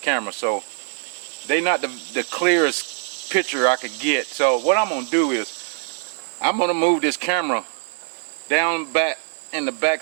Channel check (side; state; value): left; silent; 60 dB below the other